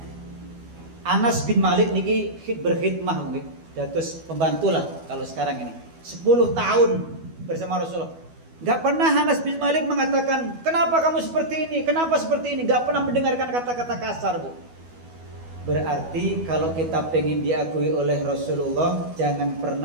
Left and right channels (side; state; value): left; late; 12 ms